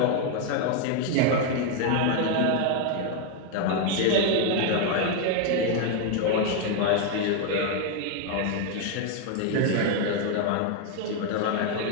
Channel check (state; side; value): different; both; correlation 0.00